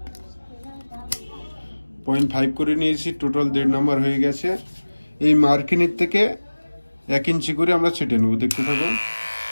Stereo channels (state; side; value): inverted; both; correlation -1.00